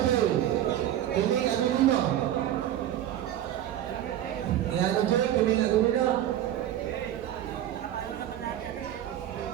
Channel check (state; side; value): quieter; left; 12.0 dB